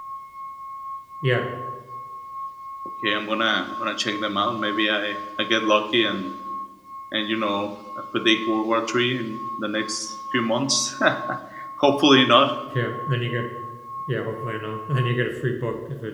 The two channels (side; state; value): both; identical; correlation 1.00